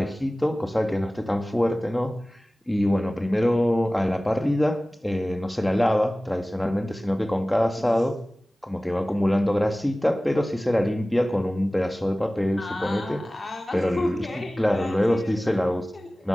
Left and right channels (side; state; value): both; normal; correlation 0.98